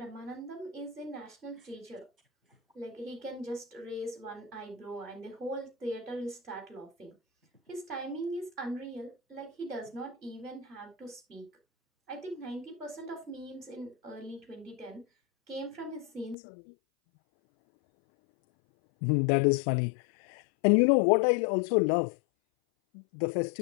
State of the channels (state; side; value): drops out; right; at 16.4 s